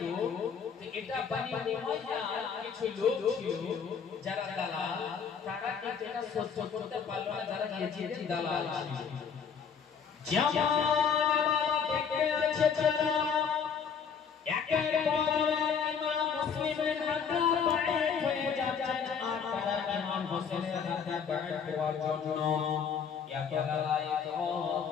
এটা বনি উমাইয়া কিছু লোক ছিল যারা দালাল, তারা কিন্তু এটা সহ্য করতে পারল না, যারা ইয়াজিদের দালাল ছিল। জামাল দেখতে আছে যারা একের পর ইমাম মুসলিমের হাতে বাড়িত হয়ে যাচ্ছে, আর তারা ইমাম হোসেনের হাতে বাড়িত হওয়ার জন্য এত লড়াই তো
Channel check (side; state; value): right; quieter; 6.6 dB